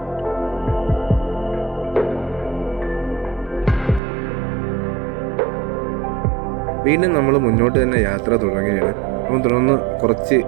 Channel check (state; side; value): drops out; left; at 4.0 s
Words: വീണ്ടും നമ്മൾ മുന്നോട്ട് തന്നെ യാത്ര തുടങ്ങുകയാണ്. അപ്പം തുടർന്ന് കുറച്ച്